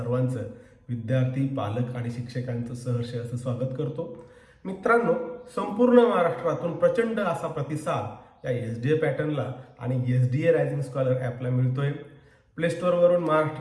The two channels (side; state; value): both; identical; correlation 1.00